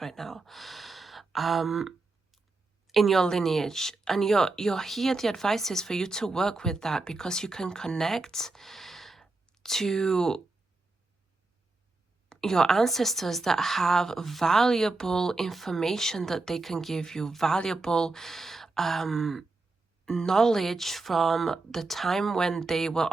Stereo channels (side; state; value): left; quieter; 3.4 dB